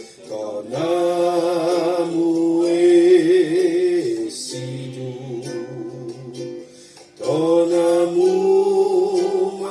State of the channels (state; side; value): identical; both; correlation 1.00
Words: ton amour est si doux, ton amour